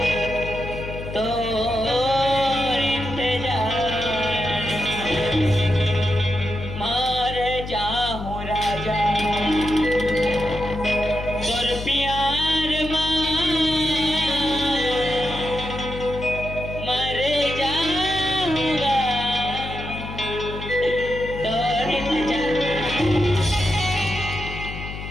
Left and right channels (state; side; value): noise; left; hum, 9 dB below the sound